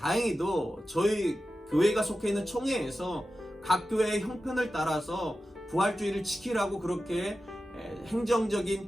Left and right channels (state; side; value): normal; both; correlation 0.93